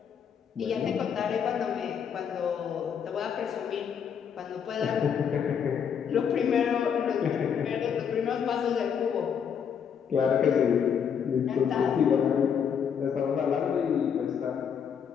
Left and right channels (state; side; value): quieter; right; 7.5 dB